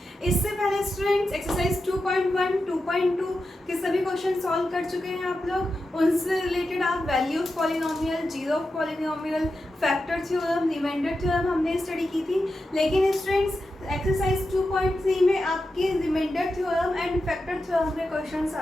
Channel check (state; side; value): normal; both; correlation 0.90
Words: इससे पहले स्टूडेंट्स एक्सरसाइज 2.1, 2.2 के सभी क्वेश्चन सॉल्व कर चुके हैं आप लोग। उनसे रिलेटेड आप value of polynomial, zero of polynomial, factor theorem, remainder theorem हमने स्टडी की थी। लेकिन स्टूडेंट्स एक्सरसाइज 2.3 में आपके remainder theorem and factor theorem के क्वेश्चंस